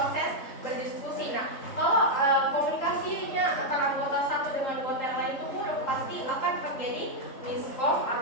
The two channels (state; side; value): late; right; 3.7 ms